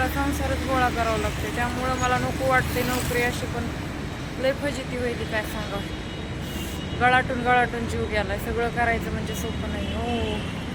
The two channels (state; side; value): identical; both; correlation 1.00